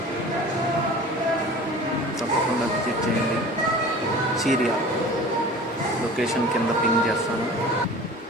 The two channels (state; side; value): normal; both; correlation 0.40